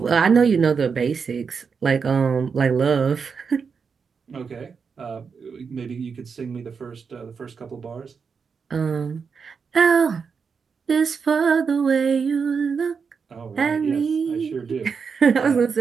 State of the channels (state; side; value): quieter; left; 5.8 dB